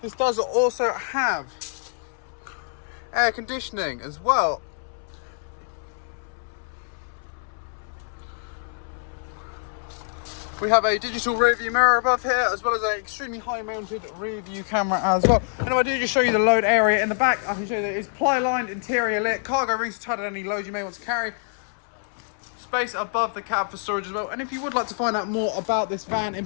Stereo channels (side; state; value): right; silent; 61 dB below the other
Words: This does also have air conditioning as well. We have a digital rear view mirror above here, as well as an extremely high mounted rear view camera as well. And if I do just show you the load area in the back, I can show you that it's ply lined, interior lit, cargo rings to tighten any load you may want to carry. Space above the cab for storage as well. And if you would like to find out more about this van in